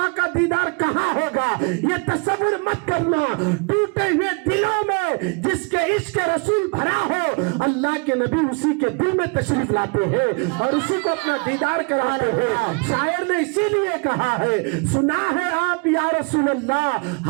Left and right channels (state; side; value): quieter; left; 32.2 dB